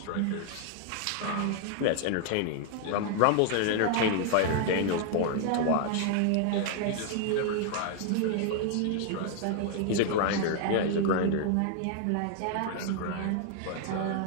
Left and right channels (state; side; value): different; both; correlation 0.00